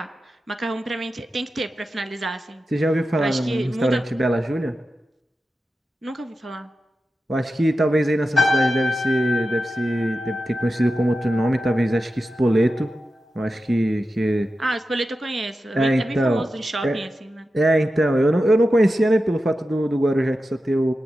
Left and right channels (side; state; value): both; normal; correlation 0.91